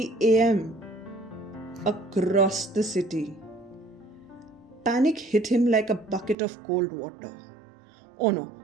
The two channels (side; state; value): left; drops out; at 6.4 s